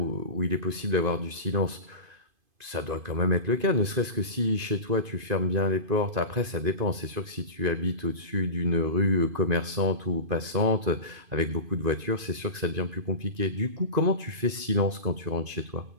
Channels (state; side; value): late; left; 2.5 ms